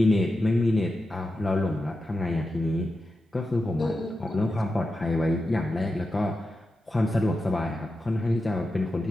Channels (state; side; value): normal; both; correlation 0.90